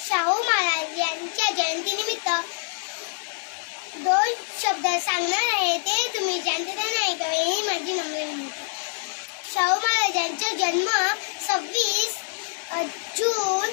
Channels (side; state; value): right; silent; digital silence